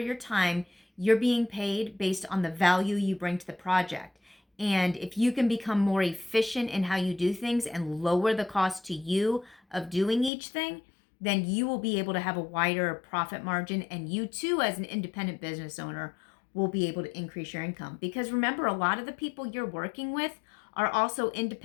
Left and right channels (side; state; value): right; drops out; at 10.3 s